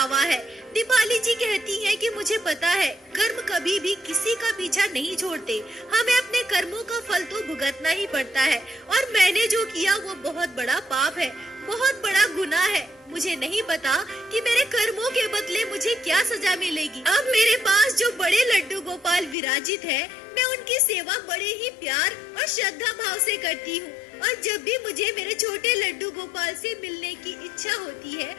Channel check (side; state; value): right; drops out; at 19.4 s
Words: है। दीपाली जी कहती हैं कि मुझे पता है कर्म कभी भी किसी का पीछा नहीं छोड़ते, हमें अपने कर्मों का फल तो भुगतना ही पड़ता है और मैंने जो किया वो बहुत बड़ा पाप है, बहुत बड़ा गुनाह है। मुझे नहीं पता कि मेरे कर्मों के बदले मुझे क्या सजा मिलेगी। अब मेरे पास जो बड़े लड्डू गोपाल विराजित है, मैं उनकी सेवा बड़े ही प्यार और श्रद्धा भाव से करती हूँ। और जब भी मुझे मेरे छोटे लड्डू गोपाल से मिलने की इच्छा होती है,